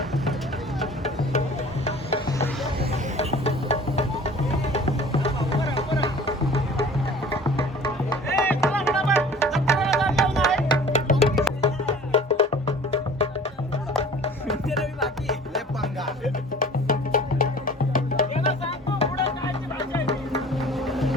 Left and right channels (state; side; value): normal; both; correlation 0.46